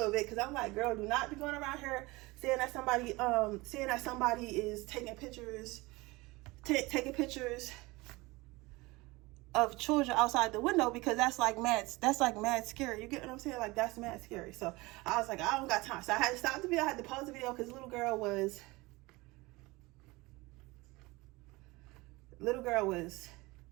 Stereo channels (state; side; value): quieter; left; 22.5 dB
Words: bit, because I'm like, girl, do not be going around here saying that somebody is taking pictures of children outside the window, because that's like mad scary. You get what I'm saying? Like, that's mad scary. So I was like, I don't got time. So I had to stop the video. I had to pause the video, because little girl was